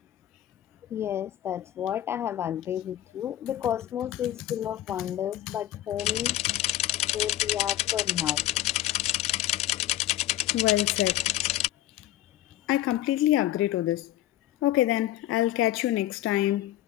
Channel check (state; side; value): quieter; right; 14.0 dB